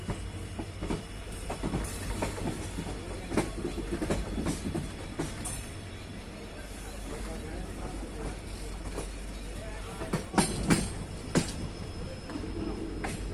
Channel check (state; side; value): identical; both; correlation 1.00